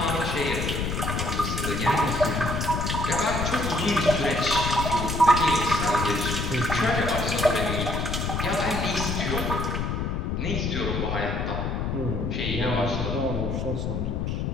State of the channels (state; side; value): noise; left; rumble, 1 dB below the sound